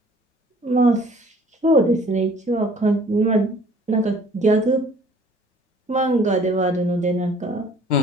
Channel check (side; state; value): both; normal; correlation 0.54